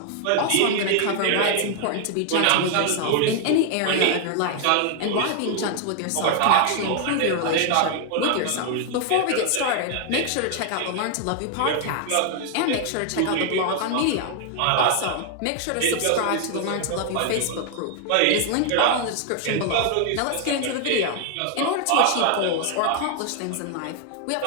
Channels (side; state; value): both; different; correlation 0.00